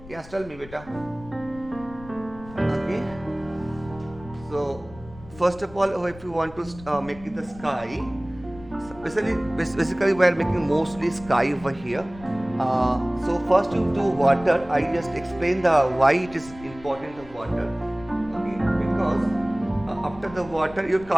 Yes, tell me, beta. Okay. So first of all, if you want to make it the sky, basically we are making mostly sky over here. So first you do water. I just explain the why it is important the water. Okay, because after the water, your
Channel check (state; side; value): noise; left; rumble, 19 dB below the sound